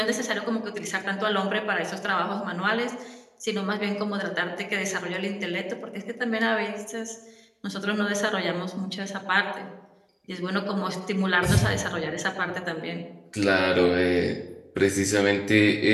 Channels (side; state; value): both; identical; correlation 1.00